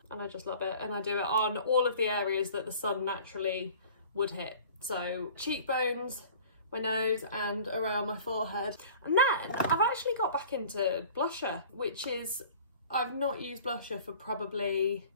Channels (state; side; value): inverted; both; correlation -0.46